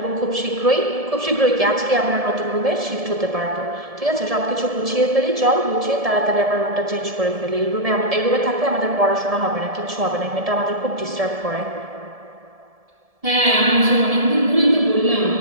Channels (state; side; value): late; left; 1.7 ms